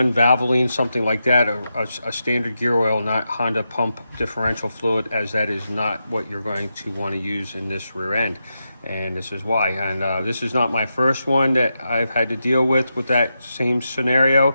Valvoline, something like that, a standard gear oil, not Honda pump differential fluid, as that is not what you're going to want to use in this rear end. And this is why. And this is not my first one that I've had to deal with that same scenario.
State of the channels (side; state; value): both; inverted; correlation -0.87